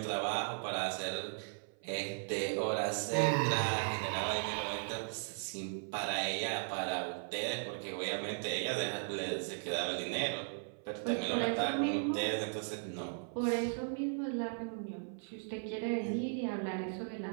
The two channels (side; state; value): left; silent; 53 dB below the other